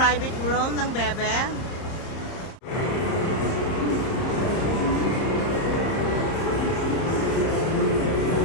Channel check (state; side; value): late; right; 30 ms